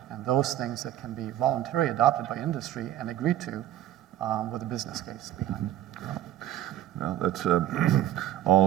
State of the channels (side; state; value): left; quieter; 12.6 dB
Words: and those things that can be voluntarily adopted by industry and agreed to with a business case behind it. Well, that's